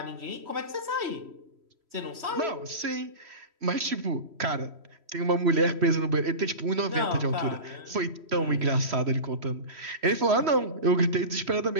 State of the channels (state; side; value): late; left; 3.1 ms